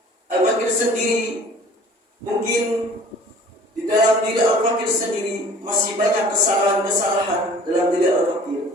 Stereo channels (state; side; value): normal; both; correlation 0.49